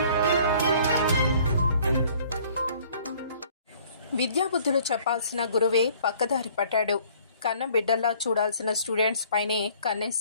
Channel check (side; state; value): both; inverted; correlation -0.56